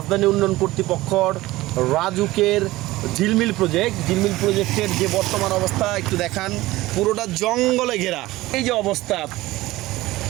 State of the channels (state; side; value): quieter; left; 18.2 dB